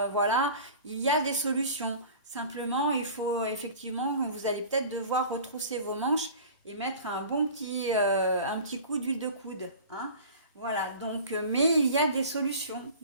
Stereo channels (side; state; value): both; inverted; correlation -0.40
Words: voilà, il y a des solutions. Simplement, il faut effectivement, vous allez peut-être devoir retrousser vos manches et mettre un petit coup d'huile de coude, hein. Voilà, donc, mais il y a des solutions,